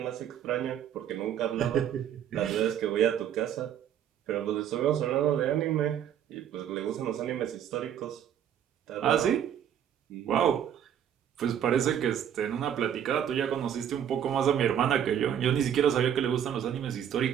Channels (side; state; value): left; quieter; 9.5 dB